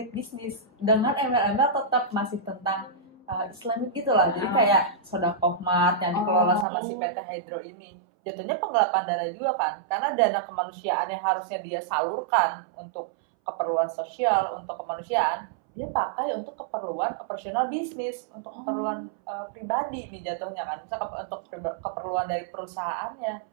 bisnis dengan embel-embel tetap masih tentang Islamic gitu lah. Jadi kayak Sodakoh Mart yang dikelola sama si PT Hydro ini. Jatuhnya penggelapan dana juga kan. Karena dana kemanusiaan yang harusnya dia salurkan untuk keperluan sosial, untuk kemanusiaan, dia pakai untuk keperluan operasional bisnis, untuk keperluan pribadi nih jatuhnya kan. Bisa untuk keperluan dari perusahaannya,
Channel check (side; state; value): left; drops out; at 6.7 s